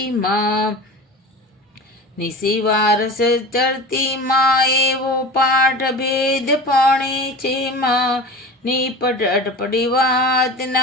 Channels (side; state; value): both; normal; correlation 0.34